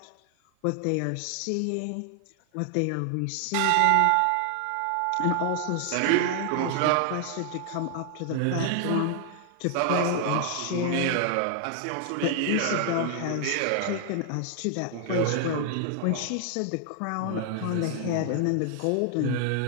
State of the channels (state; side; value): different; both; correlation 0.00